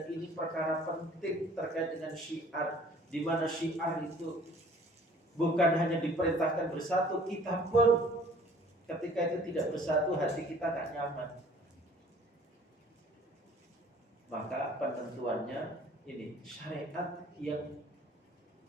ini perkara penting terkait dengan syiar, di mana syiar itu bukan hanya diperintahkan bersatu, kita pun ketika itu tidak bersatu, hati kita gak nyaman. Maka penentuannya ini syariat yang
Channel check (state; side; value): normal; both; correlation 0.53